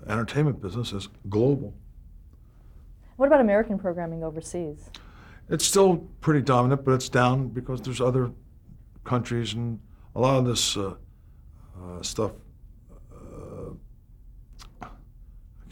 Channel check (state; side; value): identical; both; correlation 1.00